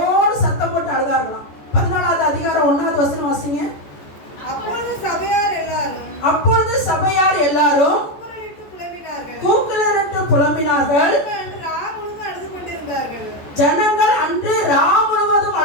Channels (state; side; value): late; right; 14 ms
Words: சத்தம் போட்டு அழுதார்களாம். 14வது அதிகாரம் எல்லாரும் கூக்குரலிட்டு புலம்பினார்கள். ஜனங்கள் அன்று ரா முழுவதும்